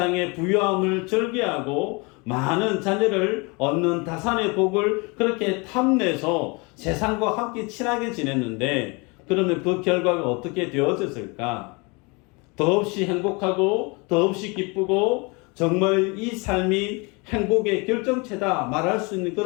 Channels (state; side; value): quieter; right; 28.9 dB